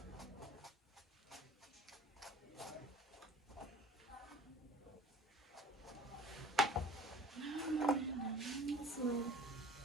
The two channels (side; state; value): both; normal; correlation 0.47